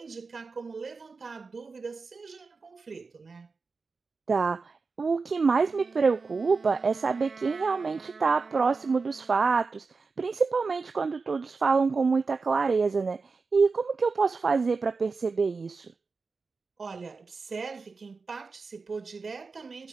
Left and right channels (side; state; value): left; quieter; 4.4 dB